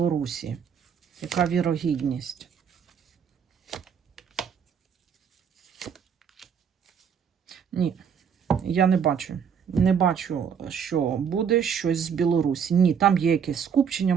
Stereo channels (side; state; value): left; quieter; 7.3 dB